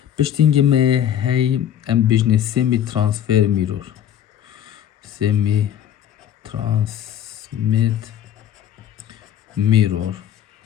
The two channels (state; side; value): quieter; right; 10.2 dB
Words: بشتينجي ما هي ام بجني semi transfer mirror semi transmit mirror